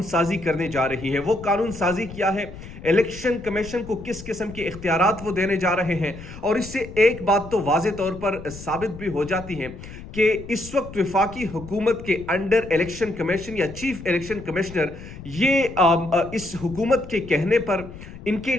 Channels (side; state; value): left; noise; rumble, 14 dB below the sound